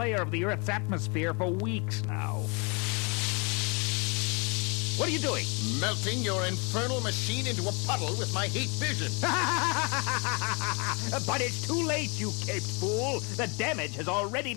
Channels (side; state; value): right; quieter; 32.0 dB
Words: of the Earth's atmosphere for weeks now. What are you doing? Melting your infernal machine into a puddle with my heat vision. But it's too late, you caped fool. The damage has already